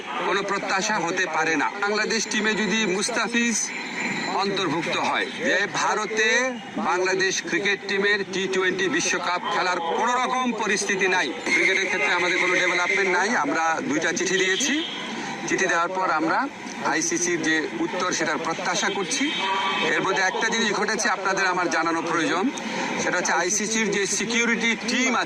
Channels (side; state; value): both; identical; correlation 1.00